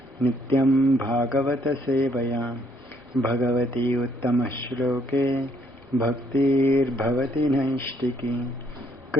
नित्यं भागवतसेवया भगवती उत्तमश्लोके भक्तिर्भवति नैष्टिकी।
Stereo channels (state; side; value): normal; both; correlation 0.68